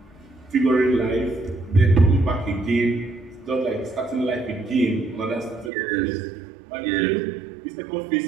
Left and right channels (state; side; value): drops out; left; at 5.7 s